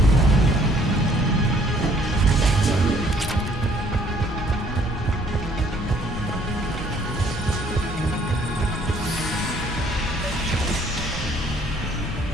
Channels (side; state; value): both; normal; correlation 0.61